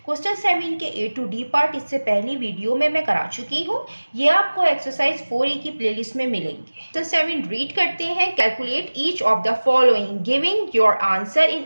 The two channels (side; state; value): both; inverted; correlation -1.00